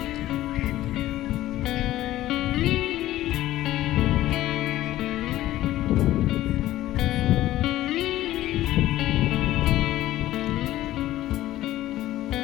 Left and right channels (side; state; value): right; quieter; 14.8 dB